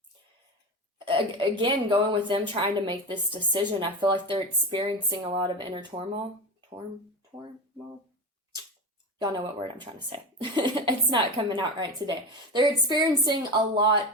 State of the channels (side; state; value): both; normal; correlation 0.24